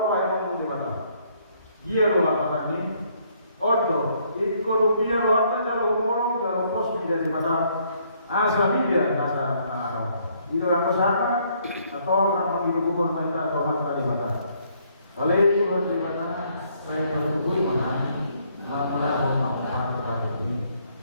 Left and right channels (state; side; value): inverted; both; correlation -0.67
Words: emang di mana? Dia lo lapangan ini, odo, ikut rupiah lo aja jalur umur, jalur pos menjadi mana? Asal dia masa nado. Itu yang kesana atau orang panggil gubernur mereka atau mana di mana? Kalau itu di mana? Saya berhubung mana? Mana orang pada ini?